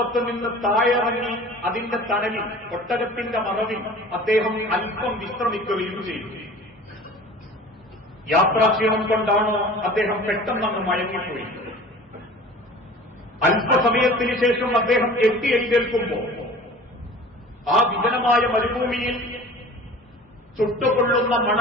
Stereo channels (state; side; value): normal; both; correlation 0.42